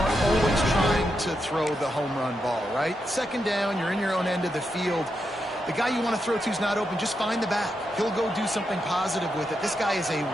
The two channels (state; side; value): normal; both; correlation 0.85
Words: always trying to throw the home run ball, right? Second down, you're in your own end of the field. The guy you want to throw to is not open. Just find the back. He'll go do something positive with it. This guy is a